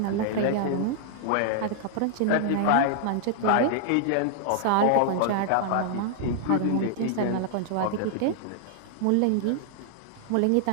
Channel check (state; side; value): different; both; correlation -0.01